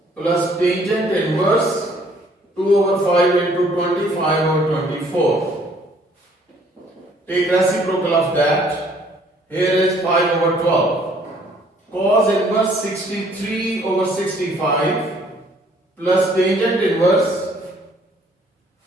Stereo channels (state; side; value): normal; both; correlation 0.61